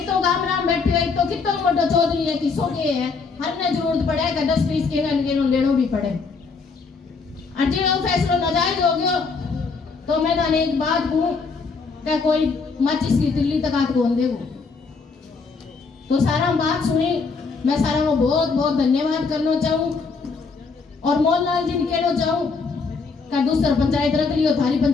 तो गाम राम बैठे है, एक तो कितना मोटा चौधरी है, किसो के है, हर ने जरूरत पड़े कि 10-20 के लेनो भी पड़े। अजे वो फैसला नाजायज हो गयो तो मैं थाने एक बात कहूं कि कोई माचिस की तिल्ली तक हाथ कौन देगो। तो सारा बात सुनी, मैं सारा को बहुत बहुत धन्यवाद करना चाहूं, और मोहनलाल जी ने कहना चाहूं कि दूसरा पंचायत रख लियो, थारी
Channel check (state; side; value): quieter; right; 4.7 dB